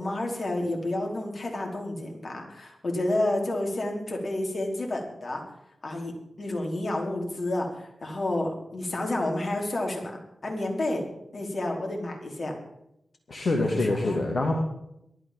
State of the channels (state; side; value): normal; both; correlation 0.94